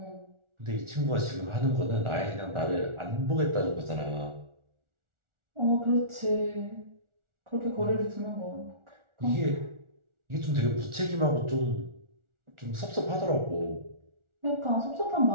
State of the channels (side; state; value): left; late; 1.4 ms